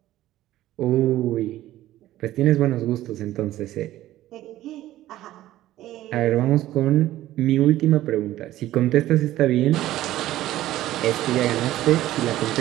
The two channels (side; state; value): left; quieter; 14.6 dB